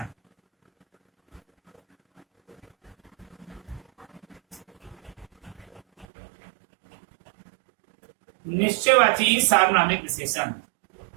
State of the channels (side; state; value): left; drops out; at 6.1 s